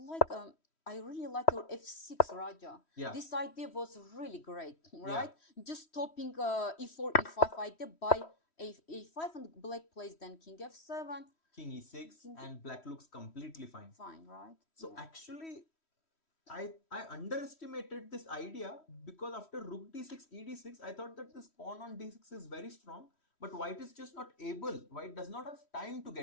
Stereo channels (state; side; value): late; right; 3.1 ms